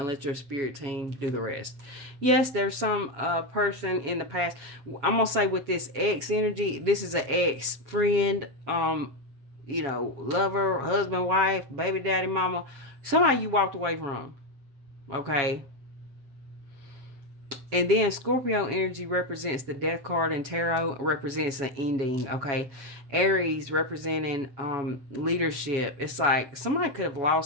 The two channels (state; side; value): late; left; 7.2 ms